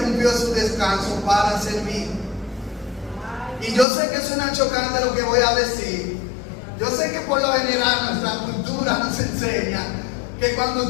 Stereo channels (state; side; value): drops out; right; at 3.9 s